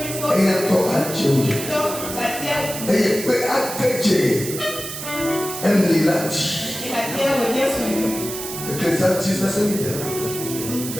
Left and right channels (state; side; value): noise; right; hiss, 8 dB below the sound